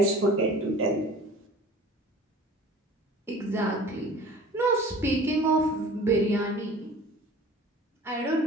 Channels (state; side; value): normal; both; correlation 0.44